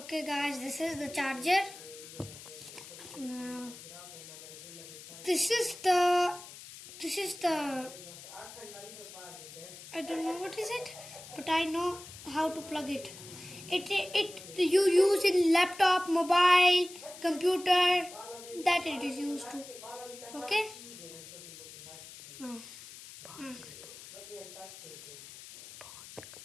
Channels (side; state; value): left; noise; hiss, 15 dB below the sound